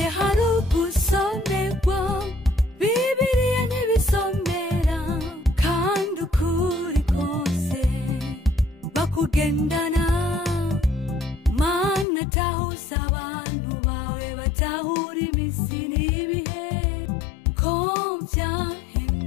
hari ugusomerwa Bibiliya ntibisomera kandi ukuri kose bakugendana Mana tahuza abantu bawe batahura iminsi n'ibihe ko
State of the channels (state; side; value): drops out; right; at 12.1 s